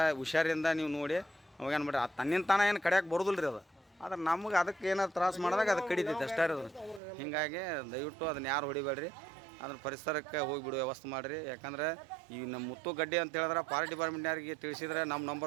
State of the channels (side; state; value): left; drops out; at 7.0 s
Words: ಹುಷಾರಿಂದ ನೀವು ನೋಡಿ ಅವಾಗೇನು ಮಾಡಿರಿ. ಅದು ತನ್ನಿಂದ ತಾನ ಏನು ಕಡಿಯೋಕೆ ಬರೋದಿಲ್ಲ ರೀ ಅದು. ಆದ್ರೆ ನಮ್ಗೆ ಅದಕ್ಕೆ ಏನಾದ್ರು ತ್ರಾಸು ಮಾಡಿದಾಗ ಅದು ಕಡಿತೈತೆ ಅಷ್ಟೇ ಇರೋದು. ಹೀಗಾಗಿ ದಯವಿಟ್ಟು ಅದನ್ನ ಯಾರು ಹೊಡಿಬೇಡ್ರಿ. ಅದನ್ನ ಪರಿಸರಕ್ಕೆ ಹೋಗಿಬಿಡುವ ವ್ಯವಸ್ಥೆ ಮಾಡಿರಿ. ಯಾಕಂದ್ರೆ ಈ ನಮ್ಮ ಮುತ್ತು ಗಡ್ಡೆ ಅಂತ ಹೇಳಿದ್ರೆ ಫಾರೆಸ್ಟ್ ಡಿಪಾರ್ಟ್ಮೆಂಟ್ನವ್ರಿಗೆ ತಿಳಿಸಿದ್ರೆ ನಮ್ಮ